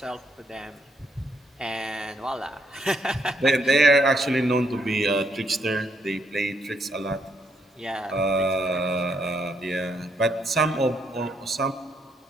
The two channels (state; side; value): normal; both; correlation 0.74